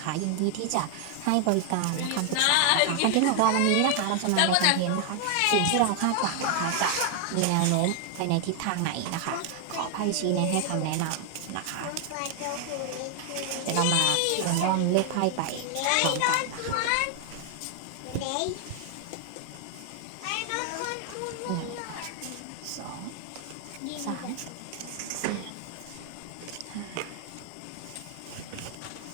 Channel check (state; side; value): different; both; correlation 0.00